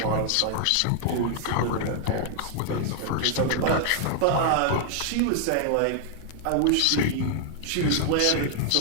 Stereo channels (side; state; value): both; different; correlation 0.00